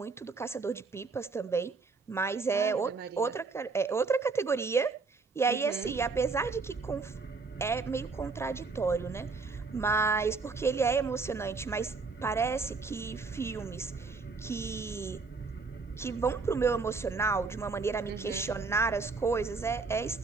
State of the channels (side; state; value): left; quieter; 4.3 dB